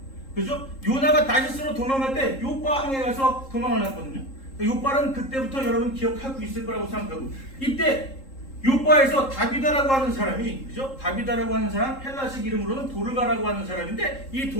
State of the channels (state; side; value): late; right; 3.7 ms